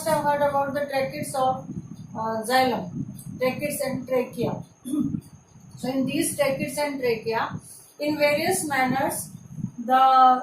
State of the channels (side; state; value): both; identical; correlation 1.00